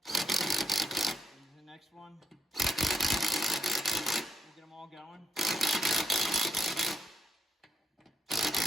and the next one. We'll get them all going.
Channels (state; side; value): normal; both; correlation 0.78